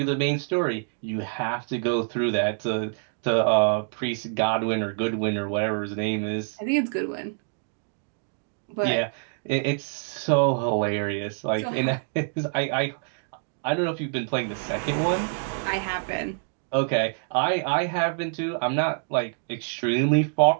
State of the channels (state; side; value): silent; left; digital silence